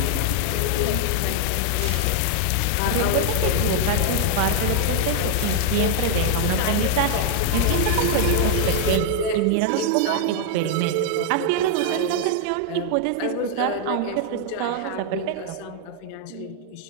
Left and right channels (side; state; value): both; different; correlation 0.00